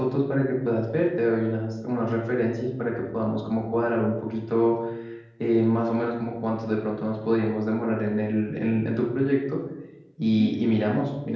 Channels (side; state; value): both; identical; correlation 1.00